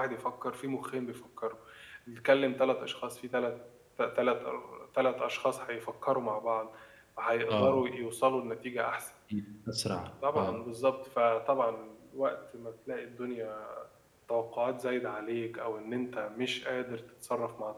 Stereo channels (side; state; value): both; identical; correlation 1.00